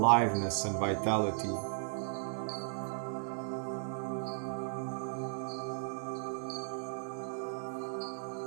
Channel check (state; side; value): silent; left; digital silence